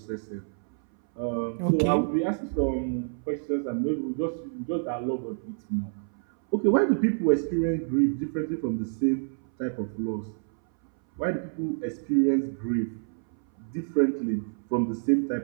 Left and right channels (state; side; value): silent; left; 59 dB below the other